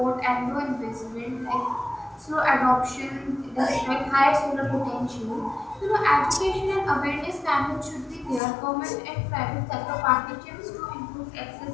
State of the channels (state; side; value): drops out; right; at 8.4 s